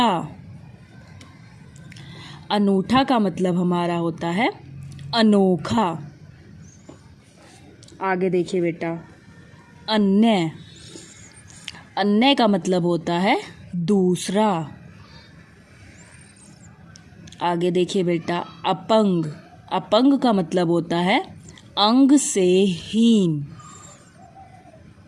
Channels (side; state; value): both; identical; correlation 1.00